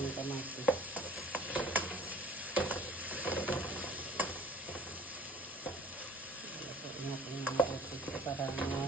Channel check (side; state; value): both; normal; correlation 0.49